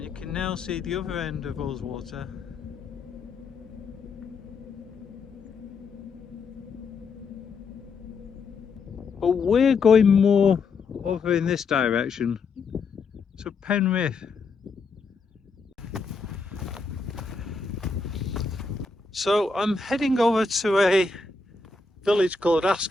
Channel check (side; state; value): right; quieter; 4.3 dB